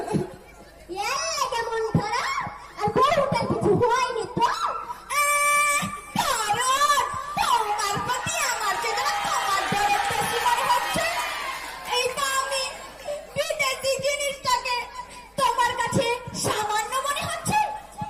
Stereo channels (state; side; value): identical; both; correlation 1.00